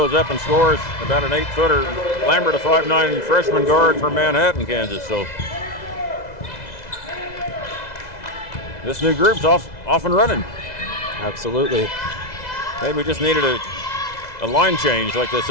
up and scores about an 8-footer. Lambert, a 5'9" freshman guard from Manhattan, Kansas. So this new group's off and running. Absolutely. Maybe we just needed a line change, like they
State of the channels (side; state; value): right; late; 2.0 ms